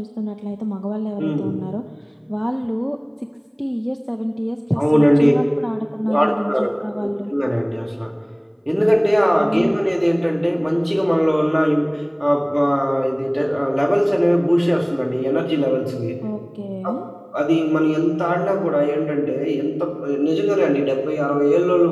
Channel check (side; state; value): both; identical; correlation 1.00